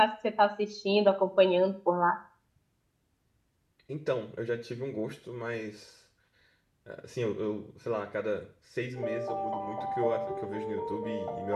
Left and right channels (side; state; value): both; identical; correlation 1.00